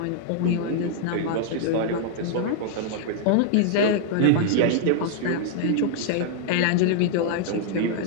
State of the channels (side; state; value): both; different; correlation -0.01